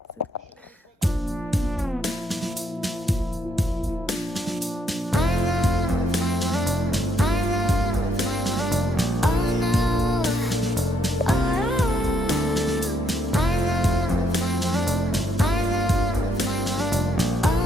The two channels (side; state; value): both; normal; correlation 0.73